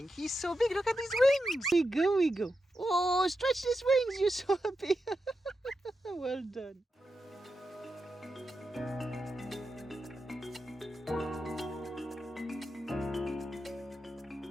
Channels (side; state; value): both; normal; correlation 0.88